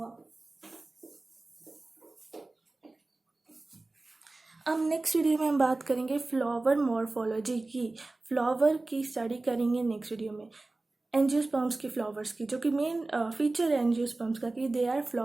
अब नेक्स्ट वीडियो में हम बात करेंगे फ्लावर मॉर्फोलॉजी की। फ्लावर की स्टडी करेंगे नेक्स्ट वीडियो में, एंजियोस्पर्म्स की, फ्लावर्स की, जो कि मेन फीचर है एंजियोस्पर्म्स का कि दे आर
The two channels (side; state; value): left; quieter; 3.1 dB